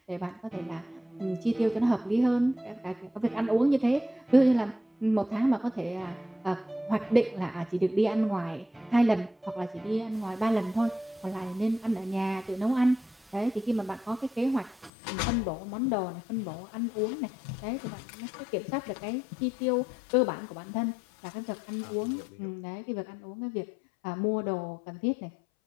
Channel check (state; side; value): drops out; right; at 14.9 s